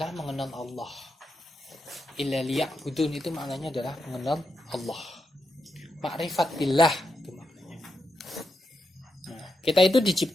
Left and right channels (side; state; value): both; normal; correlation 0.85